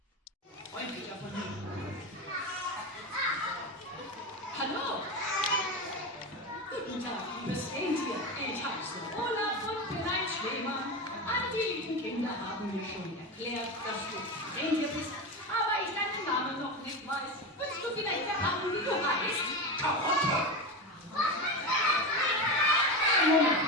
Freundlicher von mir. Hallo! Guten Tag, liebes Rentier. Ich heiße Olaf und bin ein Schneemann. All die lieben Kinder haben mir schon erklärt, dass du ein Rentier bist, aber ich deinen Namen noch nicht weiß. Willst du vielleicht verraten, wie du heißt? Karotte!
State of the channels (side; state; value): both; normal; correlation 0.20